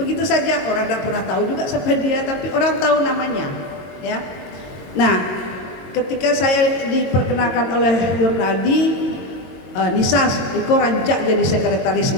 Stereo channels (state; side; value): late; right; 22 ms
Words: saja, orang tidak pernah tahu juga siapa dia, tapi orang tahu namanya, ya. Nah, ketika saya diperkenalkan oleh Yurnaldi, Nisas, Iko rancak jadi sekretaris